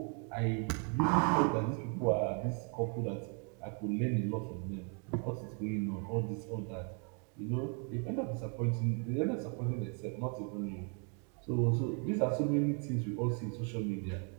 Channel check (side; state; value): left; quieter; 39.8 dB